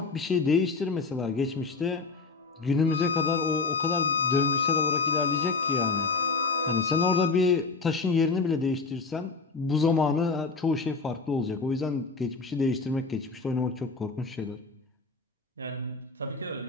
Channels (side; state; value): right; quieter; 4.2 dB